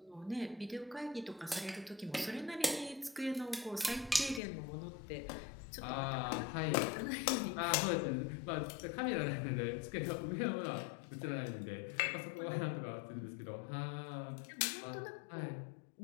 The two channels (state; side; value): drops out; right; at 4.4 s